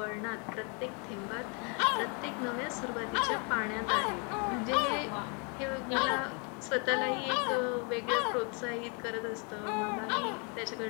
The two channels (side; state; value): right; quieter; 35.3 dB